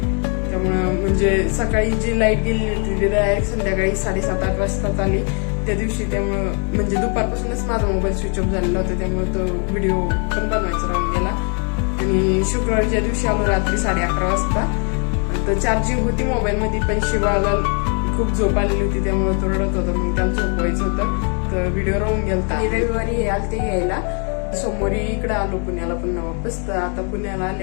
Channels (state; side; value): quieter; right; 39.8 dB